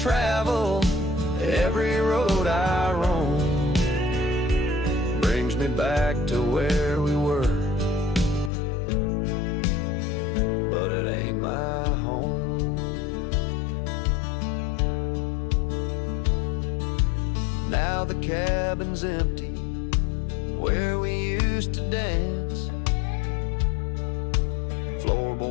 every road I roam, brings me back to where we were, but it ain't my home. Now the cabin's empty where we used to dance.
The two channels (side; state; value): right; drops out; at 8.5 s